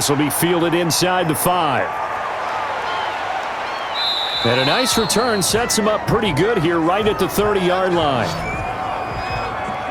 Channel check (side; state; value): both; identical; correlation 1.00